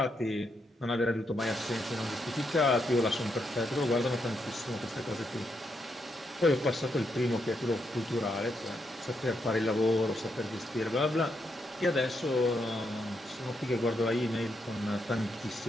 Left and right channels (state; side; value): normal; both; correlation 0.80